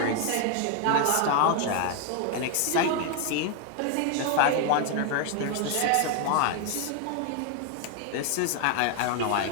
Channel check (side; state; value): both; different; correlation 0.01